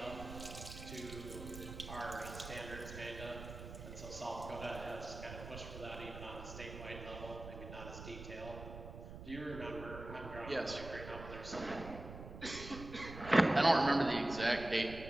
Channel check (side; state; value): right; noise; rumble, 11 dB below the sound